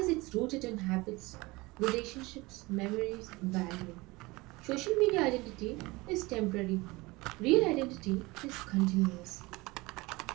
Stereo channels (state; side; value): quieter; left; 22.6 dB